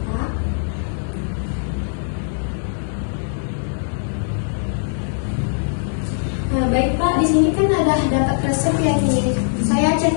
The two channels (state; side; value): silent; right; digital silence